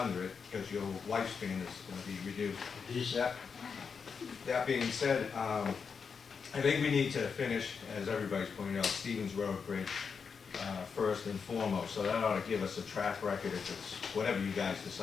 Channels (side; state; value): right; quieter; 5.9 dB